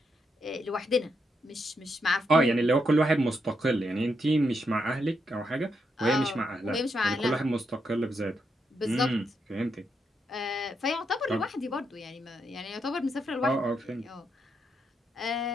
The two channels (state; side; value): normal; both; correlation 0.81